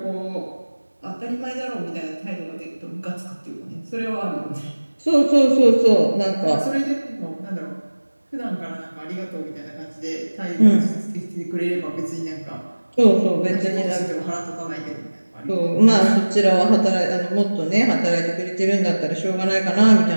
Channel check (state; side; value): inverted; both; correlation -1.00